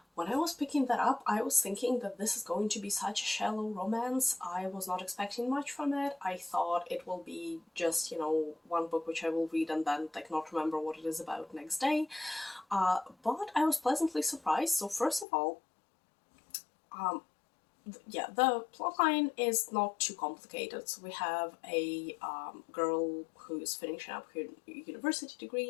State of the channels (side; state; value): right; drops out; at 15.2 s